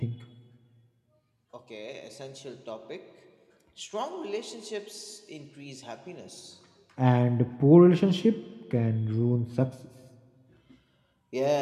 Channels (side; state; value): both; identical; correlation 1.00